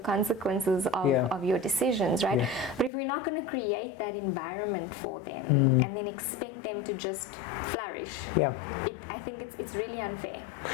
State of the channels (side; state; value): right; drops out; at 2.9 s